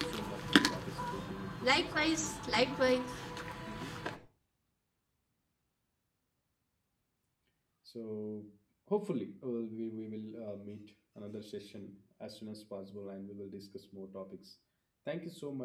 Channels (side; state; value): both; identical; correlation 1.00